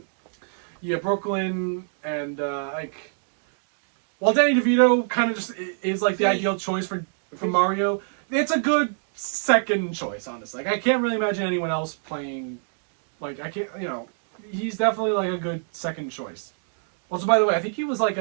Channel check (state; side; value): silent; left; digital silence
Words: Yeah, Brooklyn, and while Danny DeVito kind of just is like the ideal choice for Mario, it's a good second choice, honestly. I can't really imagine anyone else playing, he's definitely like a good second choice. Also, by the way, I think he was like